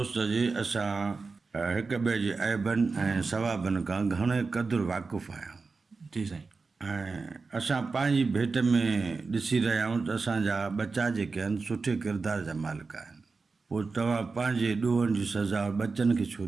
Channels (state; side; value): quieter; left; 4.3 dB